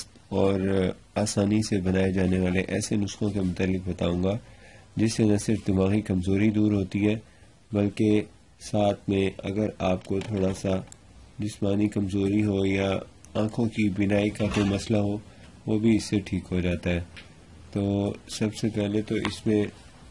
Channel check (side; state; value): both; identical; correlation 1.00